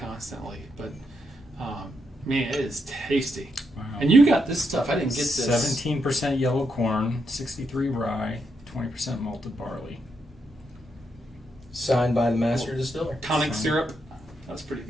But man, it is tasty. Wow. And you got this stuff. I didn't get this. 17% yellow corn, 63 rye, 20% malted barley. Signed by the master distiller. Tonic syrup. That's pretty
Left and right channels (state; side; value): normal; both; correlation 0.80